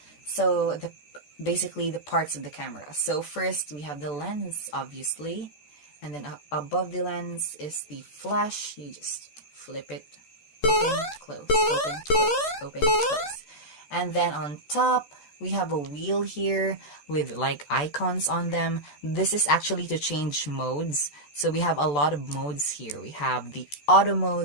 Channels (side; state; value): right; late; 13 ms